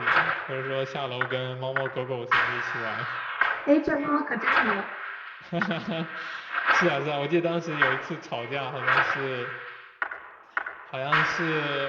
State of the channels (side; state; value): both; identical; correlation 1.00